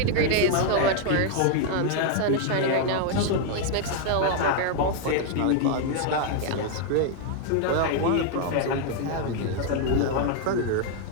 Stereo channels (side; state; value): both; different; correlation 0.00